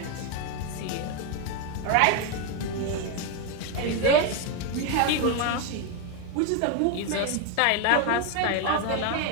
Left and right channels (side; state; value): both; different; correlation 0.02